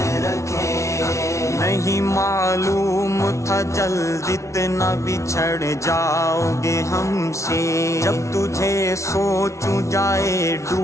رکھے۔ نہیں معلوم تھا جلد اتنا بچھڑ جاؤ گے ہم سے، جب تجھے سوچوں جائے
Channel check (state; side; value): late; right; 0.14 ms